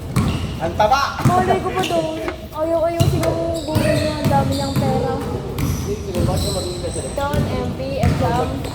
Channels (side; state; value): both; identical; correlation 1.00